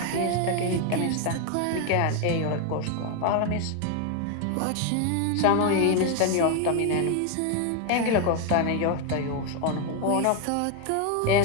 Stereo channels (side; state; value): both; different; correlation 0.01